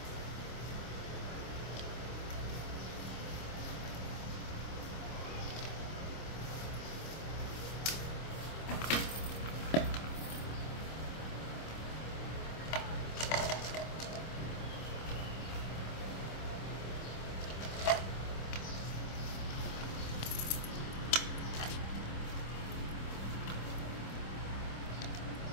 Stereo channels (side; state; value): right; late; 26 ms